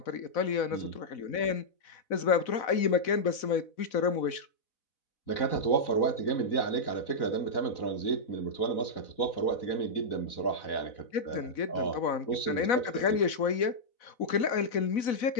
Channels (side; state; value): right; late; 4.0 ms